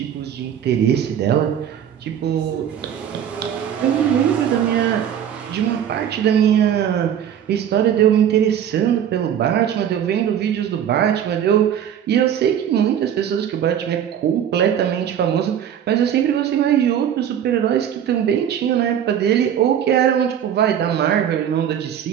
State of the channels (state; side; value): quieter; left; 9.5 dB